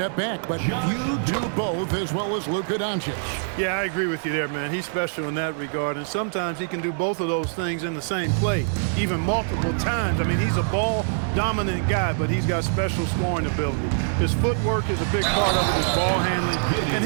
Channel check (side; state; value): left; silent; 60 dB below the other